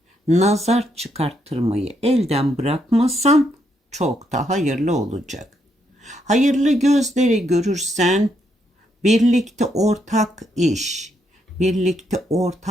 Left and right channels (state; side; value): normal; both; correlation 0.76